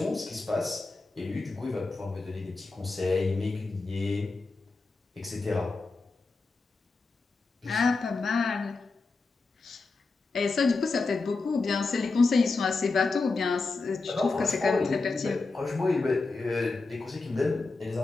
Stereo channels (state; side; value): quieter; right; 3.8 dB